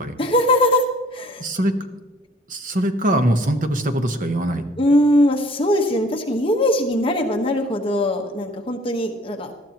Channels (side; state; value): both; normal; correlation 0.54